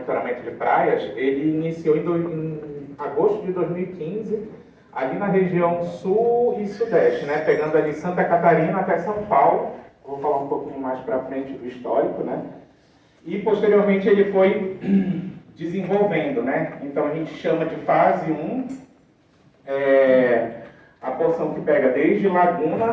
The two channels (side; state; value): both; identical; correlation 1.00